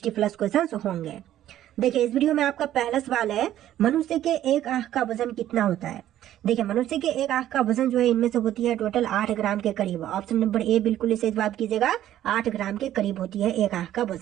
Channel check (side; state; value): left; quieter; 12.4 dB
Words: क्वेश्चंस होंगे। देखिए, इस वीडियो में आपका पहला सवाल है, मनुष्य के एक आंख का वजन कितना होता है। देखिए, मनुष्य के एक आंख का वजन जो है इनमें से होती है टोटल 8 ग्राम के करीब। ऑप्शन नंबर ए बिल्कुल इसे जवाब कीजिएगा। 8 ग्राम के करीब होती है एक आंख का